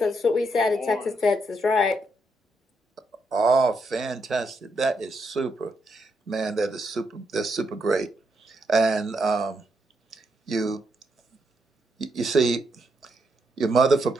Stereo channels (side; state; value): both; normal; correlation 0.79